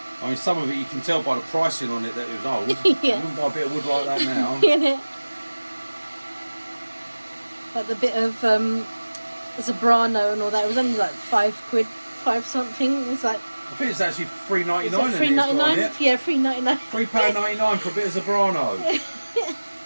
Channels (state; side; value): inverted; both; correlation -1.00